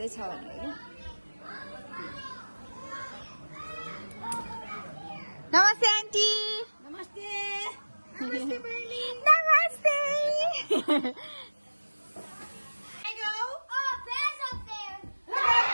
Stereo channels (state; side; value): inverted; both; correlation -1.00